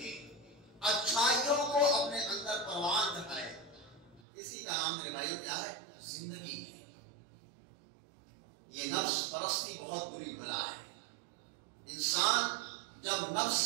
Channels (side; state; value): left; drops out; at 4.2 s